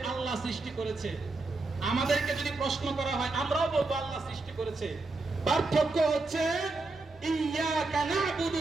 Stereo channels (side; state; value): left; quieter; 3.4 dB